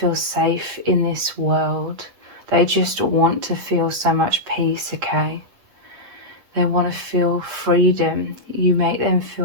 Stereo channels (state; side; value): late; left; 8.7 ms